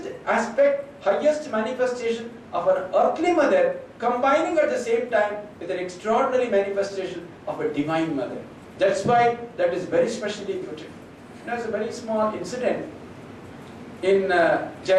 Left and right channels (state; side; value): identical; both; correlation 1.00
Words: aspect, highest manifestation of an earthly mother combining at the same time with an extraordinary manifestation of a divine mother. That's why that is very specially put. There's a very small incident in